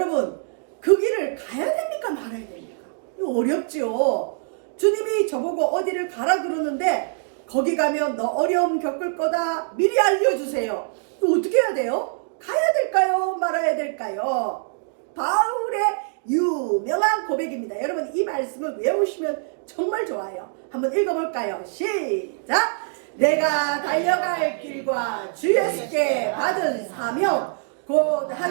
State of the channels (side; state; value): left; silent; digital silence